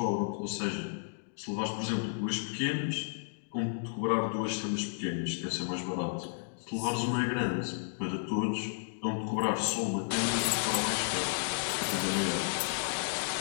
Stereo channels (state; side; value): silent; right; digital silence